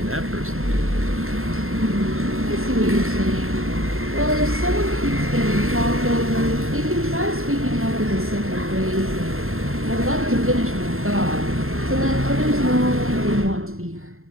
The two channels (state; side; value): late; left; 0.61 ms